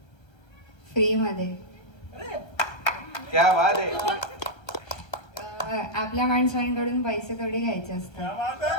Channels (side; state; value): right; late; 1.3 ms